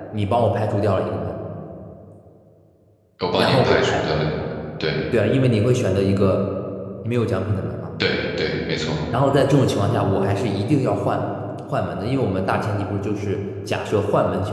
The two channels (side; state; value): both; identical; correlation 1.00